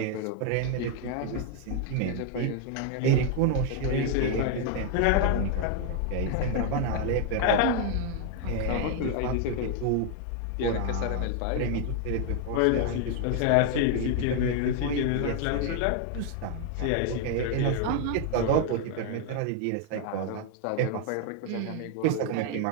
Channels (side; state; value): both; different; correlation 0.00